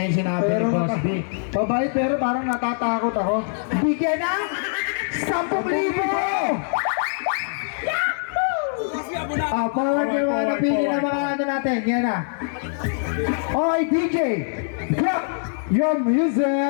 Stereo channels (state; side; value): silent; right; 60 dB below the other